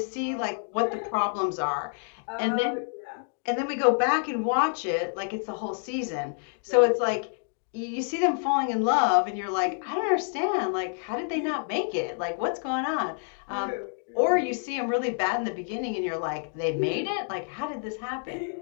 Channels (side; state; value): right; silent; 59 dB below the other